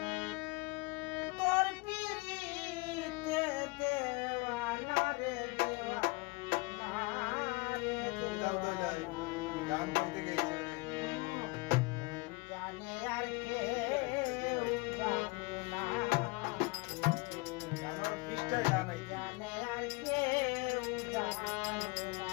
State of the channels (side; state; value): right; quieter; 26.2 dB